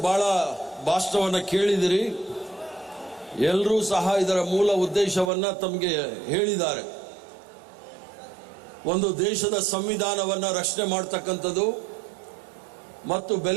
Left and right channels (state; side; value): drops out; left; at 5.3 s